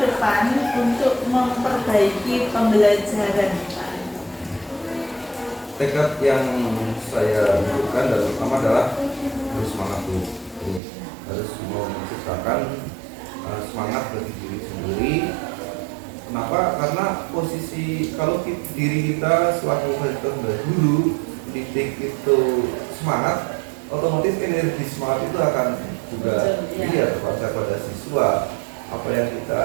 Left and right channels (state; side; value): drops out; left; at 10.8 s